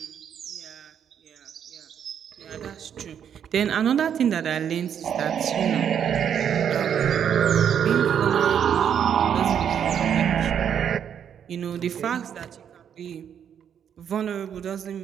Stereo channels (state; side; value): quieter; left; 8.6 dB